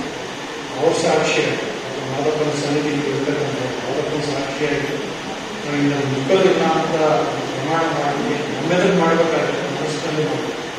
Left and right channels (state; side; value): identical; both; correlation 1.00